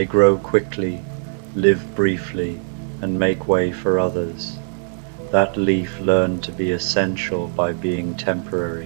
grow quickly, live briefly, and make way for others. That leaf learned to be essential by being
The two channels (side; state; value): left; silent; digital silence